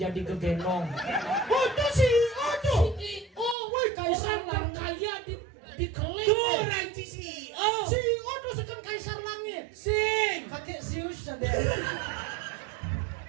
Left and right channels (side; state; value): left; drops out; at 3.6 s